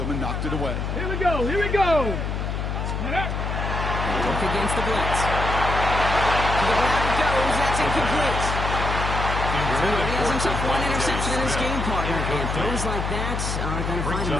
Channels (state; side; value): noise; left; hum, 2 dB below the sound